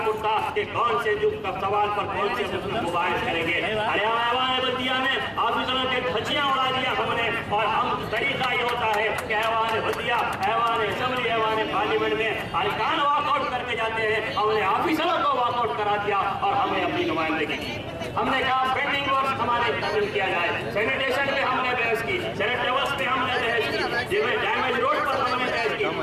उठता कि कौन से युग का सवाल पर कौन से मुद्दों को बाहर करेंगे। अरे ऐवान बल्दिया में ऑफिसरों के धज्जियां उड़ा दिया हमने। और हम तरीका ये होता है कि ऐवान बल्दिया, ऐवान असेंबली, ऐवान पार्लियामेंट में अरकान वॉकआउट करके जाते हैं। हमने ऑफिसरों को वॉकआउट करा दिया और हमें अपनी नुमाइंदगी की। हमने कहा पेंडिंग वर्क हमारे तकमील किया जाए। सैनिटेशन पे हमने बहस की, सैनिट लेवल्स पे हमने बहस की, जिसमें डैमेज रोड पर हमने बहस की,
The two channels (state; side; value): identical; both; correlation 1.00